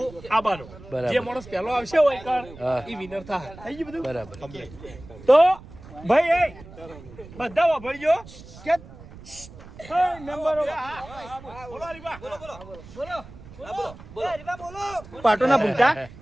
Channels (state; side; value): noise; right; rumble, 18 dB below the sound